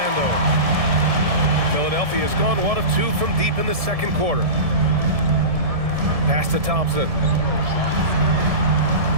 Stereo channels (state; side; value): late; left; 1.7 ms